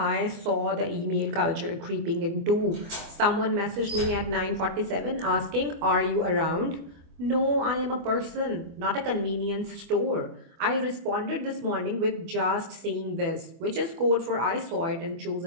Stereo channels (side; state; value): left; late; 24 ms